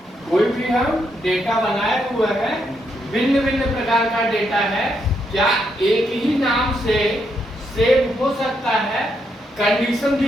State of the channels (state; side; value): normal; both; correlation 0.78